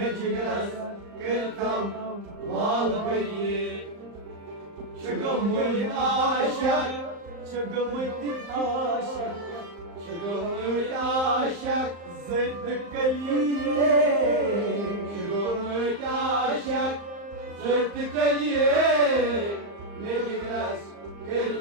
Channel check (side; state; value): left; late; 35 ms